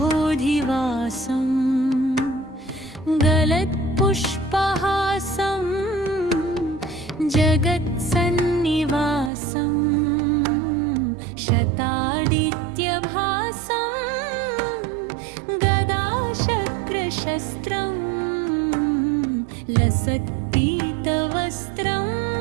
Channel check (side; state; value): left; drops out; at 9.3 s